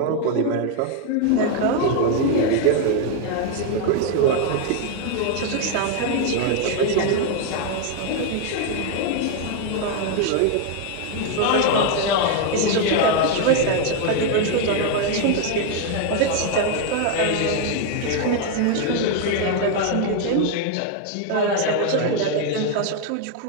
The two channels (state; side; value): different; both; correlation 0.01